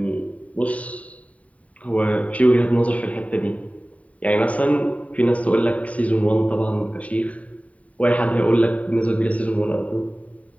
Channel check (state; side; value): late; right; 0.068 ms